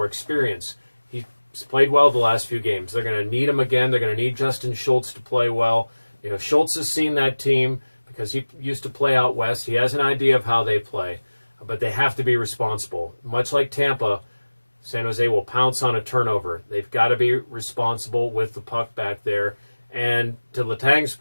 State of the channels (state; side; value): inverted; both; correlation -1.00